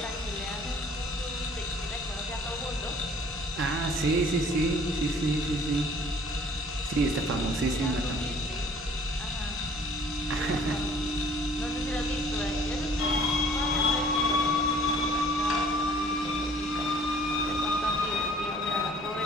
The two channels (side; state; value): both; normal; correlation 0.54